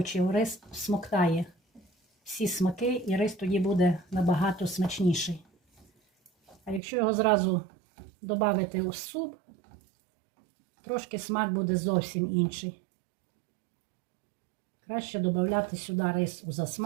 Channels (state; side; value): drops out; left; at 6.8 s